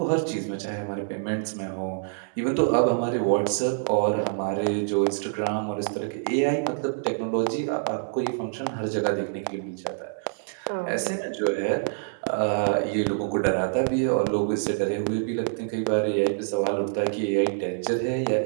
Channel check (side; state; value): left; silent; digital silence